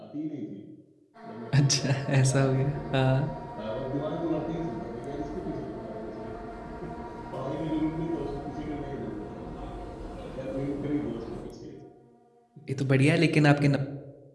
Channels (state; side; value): identical; both; correlation 1.00